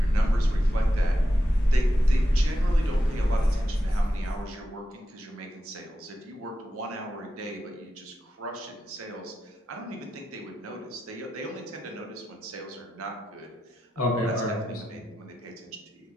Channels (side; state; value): both; normal; correlation 0.89